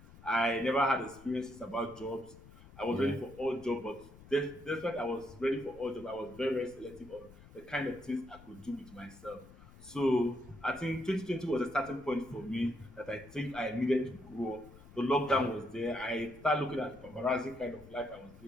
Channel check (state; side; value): noise; left; rumble, 20 dB below the sound